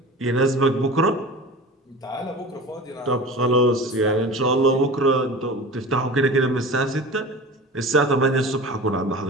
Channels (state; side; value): normal; both; correlation 0.35